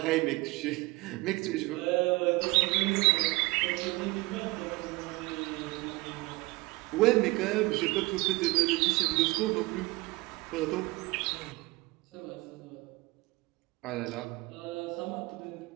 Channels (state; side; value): quieter; left; 22.9 dB